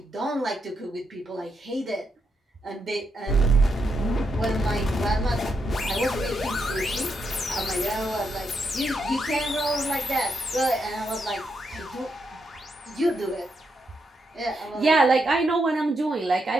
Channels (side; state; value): both; normal; correlation 0.81